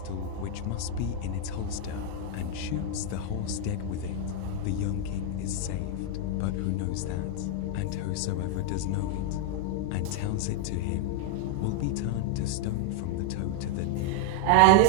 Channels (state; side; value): different; both; correlation 0.00